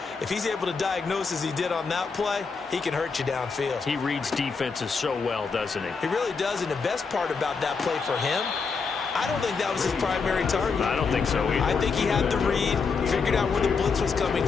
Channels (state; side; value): quieter; right; 5.1 dB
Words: if he's able to diagnose as he did on that play, he can hurt you downfield. He reads defenses so well, doesn't he? He really does, and the best part about that play for him, I don't think that was his primary target. I don't think so either. I think he had the read, figured out where the blitz was coming